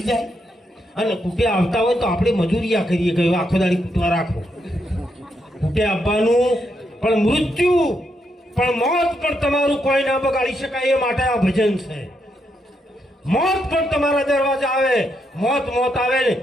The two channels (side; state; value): both; normal; correlation 0.79